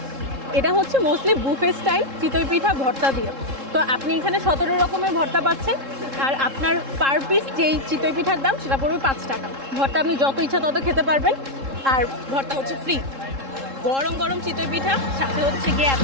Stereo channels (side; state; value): left; late; 3.7 ms